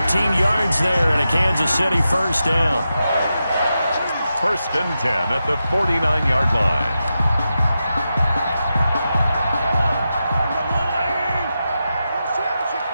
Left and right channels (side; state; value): both; inverted; correlation -0.89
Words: yards there and a Kansas City first down. 1st and 10 at the 49-yard line.